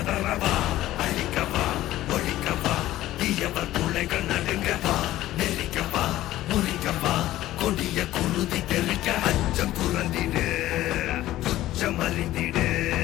அழிக்கவா ஒழிக்கவா தீயவர் துளைகள் நடுங்கவா நெருக்கவா முறிக்கவா கொடிய குருதி தெறிக்க அச்சம் புரந்திடு உச்சம் அறிந்திடு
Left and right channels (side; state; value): right; quieter; 15.0 dB